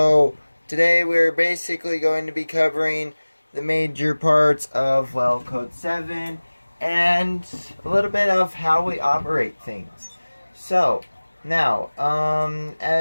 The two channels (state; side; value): inverted; both; correlation -1.00